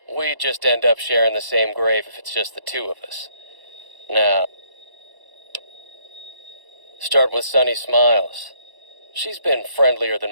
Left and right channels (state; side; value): late; left; 1.1 ms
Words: We'd just end up sharing the same grave if it's just the two of us. Now, start with Sunny Smiles. She's been friendlier